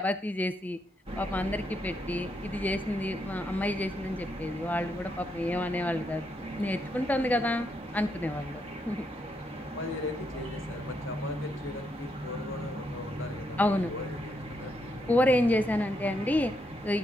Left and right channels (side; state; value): both; normal; correlation 0.78